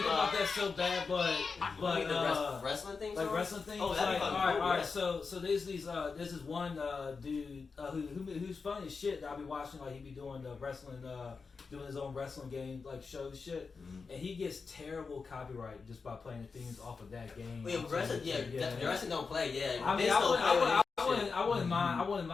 about that so bad, but Wait, the wrestling thing? like wrestling things. Oh, that'd like, be all fucking right, cool, all right. yeah. So there's this one dude who's funny as shit that I be watching. Like he be doing the wrestling, doing his own wrestling game like show shit, and he gets terrible copyright just by playing the themes off of that game. Well, yeah, wrestling, the wrestling don't play, yeah. I mean, Vince don't play I wouldn't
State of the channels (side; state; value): right; quieter; 4.8 dB